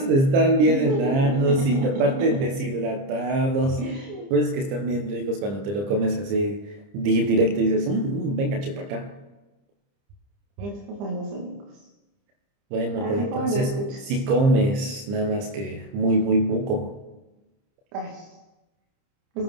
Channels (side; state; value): left; late; 30 ms